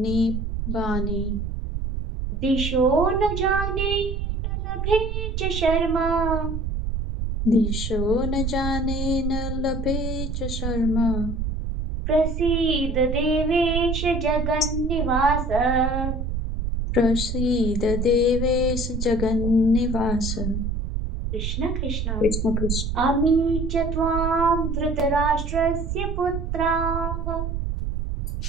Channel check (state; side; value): noise; right; rumble, 2 dB below the sound